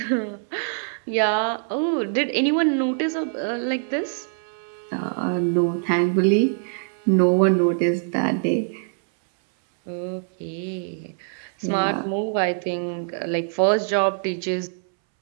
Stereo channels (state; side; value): silent; left; 63 dB below the other